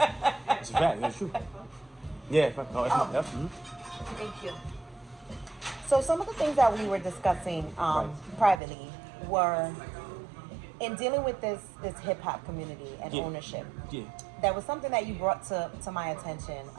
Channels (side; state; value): left; drops out; at 8.6 s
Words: It's a fact. That's true. Yeah. Mhm. Thank you. So, some of the things that we were discussing Right. privately were in dealing with this hip hop community and Yeah. ownership. Yeah. That was something that you brought to my attention